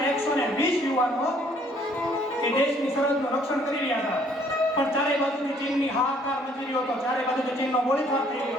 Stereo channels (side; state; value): both; normal; correlation 0.62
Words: યુવાનો એ દેશની સરહદનું રક્ષણ કરી રહ્યા હતા. પણ ચારે બાજુથી ચીનની હાહાકાર મચી રહ્યો હતો. ચારે બાજુથી ચીનનો ગોળીબાર થઈ